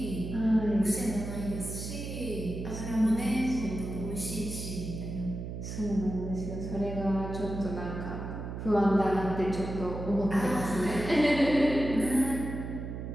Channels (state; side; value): noise; right; hum, 7 dB below the sound